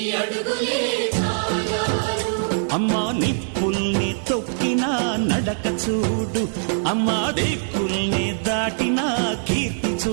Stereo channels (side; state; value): left; silent; digital silence